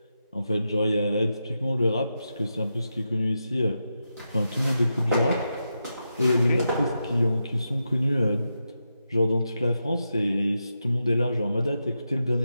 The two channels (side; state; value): both; inverted; correlation -0.87